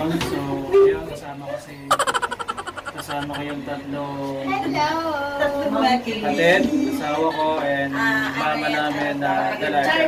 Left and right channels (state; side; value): identical; both; correlation 1.00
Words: So, ayun, kasama ko yung tatlong kapatid, asawa ko, and mama namin na